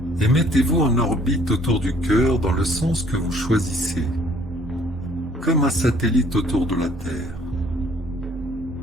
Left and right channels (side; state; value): right; noise; hum, 24 dB below the sound